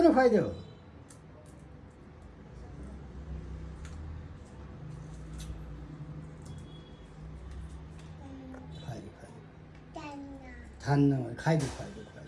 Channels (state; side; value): identical; both; correlation 1.00